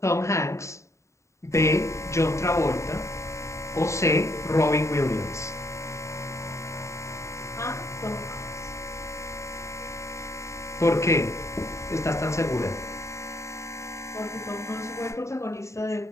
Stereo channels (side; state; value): right; late; 0.14 ms